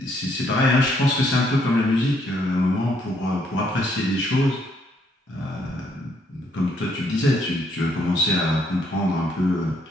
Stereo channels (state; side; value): normal; both; correlation 0.70